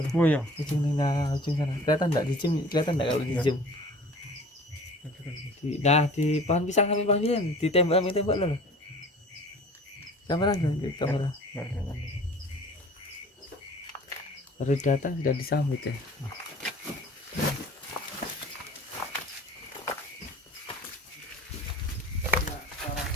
Oh iya. ujung sana kelihatan enggak di zoom kelihatan enggak kalau di zoom di pohon pisang samping pohon pisang di tembak loh kamera baru datang sudah disambut ya.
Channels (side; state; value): both; normal; correlation 0.45